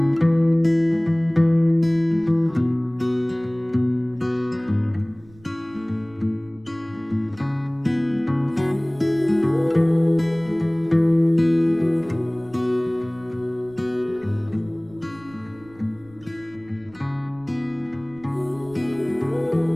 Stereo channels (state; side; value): noise; right; rumble, 26 dB below the sound